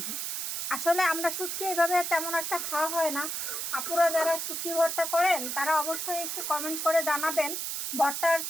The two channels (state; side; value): noise; right; hiss, 3 dB below the sound